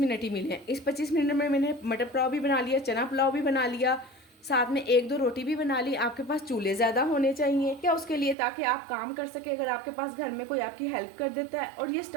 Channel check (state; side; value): drops out; left; at 8.3 s